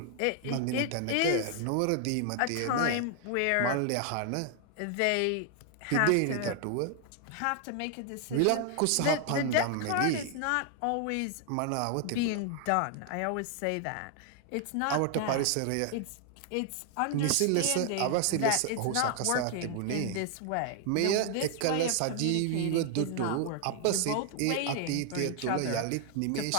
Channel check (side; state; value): both; different; correlation 0.00